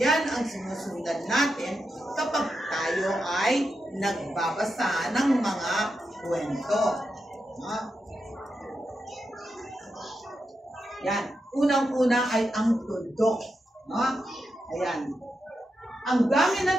ang sinusundan natin kapag tayo ay nagbabasa ng mga kwento. Yan. Unang-una ay ang tuldok. Ayan. Ang gamit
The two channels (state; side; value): normal; both; correlation 0.87